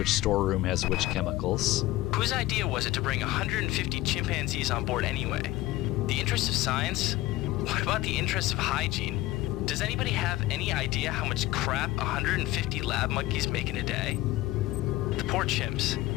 storeroom has which chemicals. Whose idea was it to bring 150 chimpanzees on board anyway? The interest of science? What about the interest of hygiene? Does anybody have any idea how much crap 150 lab monkeys make in a day? The poor chimps.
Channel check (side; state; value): right; quieter; 16.9 dB